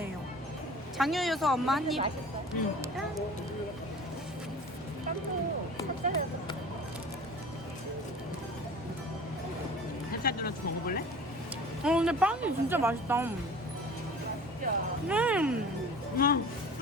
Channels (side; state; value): both; normal; correlation 0.41